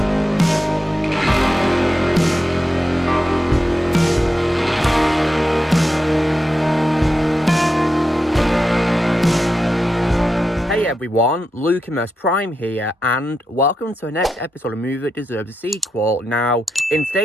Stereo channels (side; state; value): both; normal; correlation 0.87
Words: Hey everyone, Lucimus Prime here, and welcome to the next episode of Movie That Deserves a Sequel. Now, in